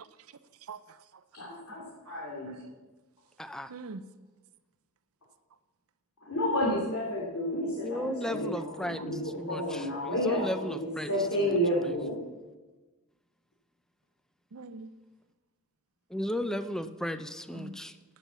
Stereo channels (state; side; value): normal; both; correlation 0.15